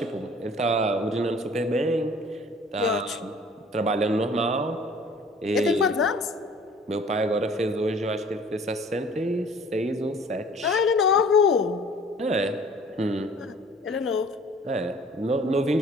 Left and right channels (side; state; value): both; normal; correlation 0.51